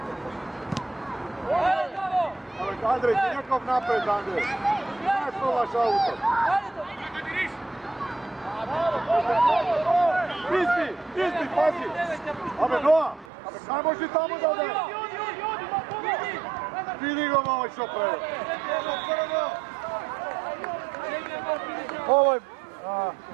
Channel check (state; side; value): drops out; left; at 13.2 s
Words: Andrej, ti nekog napred, Andrej! Ne provaš auto! Isti, pazi! Abe, Noa! Kaj možeš tamo da ode? Vidi ga malo što pravi! Ovo je...